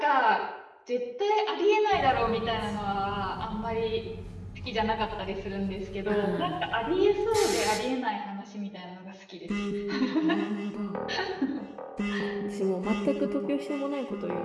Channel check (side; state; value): both; identical; correlation 1.00